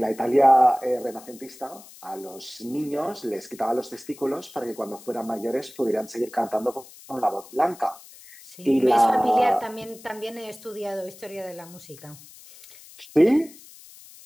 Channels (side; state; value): left; noise; hiss, 20 dB below the sound